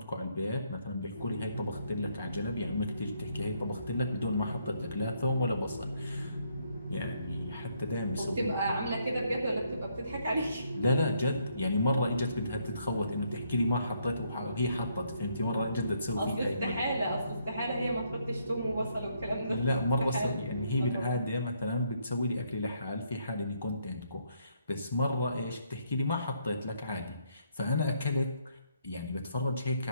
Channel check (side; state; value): both; inverted; correlation -0.73